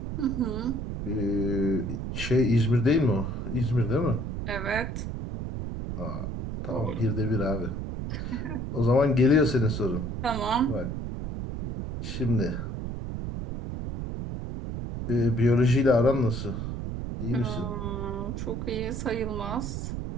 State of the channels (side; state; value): right; noise; rumble, 5 dB below the sound